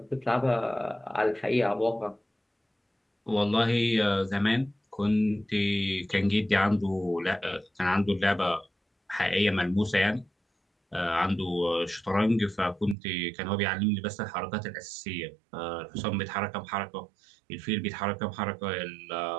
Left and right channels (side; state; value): left; drops out; at 13.0 s